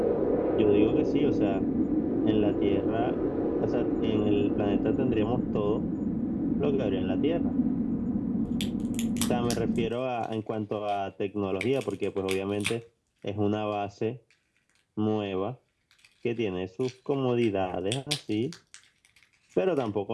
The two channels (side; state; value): both; identical; correlation 1.00